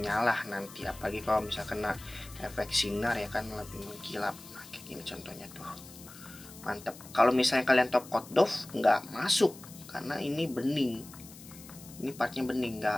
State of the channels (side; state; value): left; noise; hiss, 18 dB below the sound